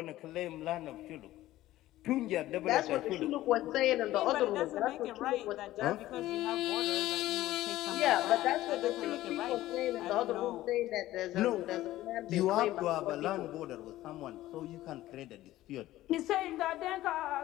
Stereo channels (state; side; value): quieter; right; 15.4 dB